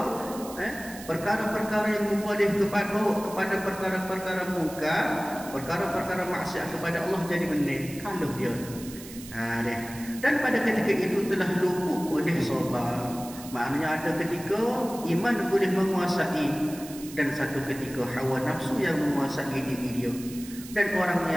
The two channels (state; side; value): noise; right; hiss, 15 dB below the sound